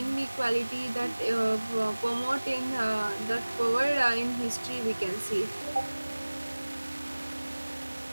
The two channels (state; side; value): inverted; both; correlation -1.00